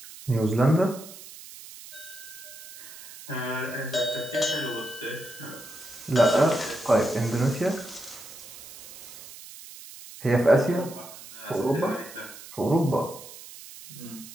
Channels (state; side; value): noise; right; hiss, 16 dB below the sound